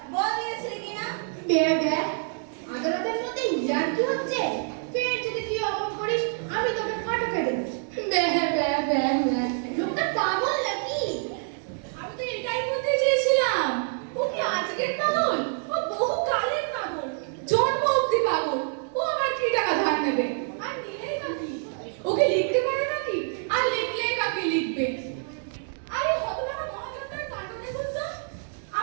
বল দিয়েছিলি কিনা? ব্যা ব্যা আদালতের মধ্যে ইয়ার কি হচ্ছে? ফের যদি তুই অমন করিস আমি তোকে ফাটকে দেব। ব্যা ব্যা ব্যা ব্যা লোকটা পাগল নাকি? আমি তো এটাই বলতে চেয়েছিলাম, ও কি আজকের পাগল? ও বহু কালের পাগল, জন্ম অব্দি পাগল। ও আমার কি টাকা ধার নেবে? আর নিলেই বা কি? ওকে লিখতে পারে নাকি? আর লিখলেই বা কি লিখবে? আরে হতভাগা মহাজনটার কাণ্ড দেখুন তো,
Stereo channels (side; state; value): left; silent; 57 dB below the other